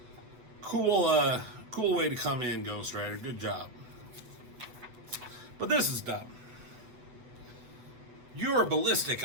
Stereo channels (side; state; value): left; late; 8.1 ms